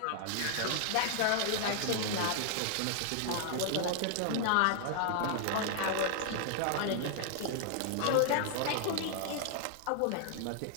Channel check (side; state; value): both; different; correlation 0.00